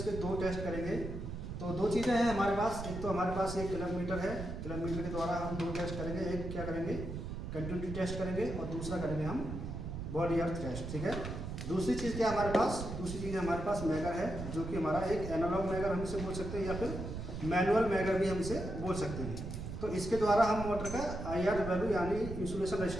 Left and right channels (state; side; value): noise; right; rumble, 6 dB below the sound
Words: 2 टेस्ट करेंगे। तो 2 चीज़ें हैं हमारे पास। एक तो हमारे पास एक क्लब मीटर है। क्लब मीटर के द्वारा हम 2 टेस्ट करेंगे। एक क्या करेंगे, कंटिन्यूटी टेस्ट करेंगे और दूसरा करेंगे हम बॉडी अर्थ टेस्ट। ठीक है। दूसरी चीज़ क्या हमारे पास, दूसरी चीज़ हमारे पास मैगर है, जो कि हमारा एक एनालॉग मैगर हम इसे बोल सकते हैं या फिर मैनुअल मैगर भी हम इसे बोल सकते हैं। तो इसके द्वारा हम मोटर का IR वैल्यू यानी इंसुलेशन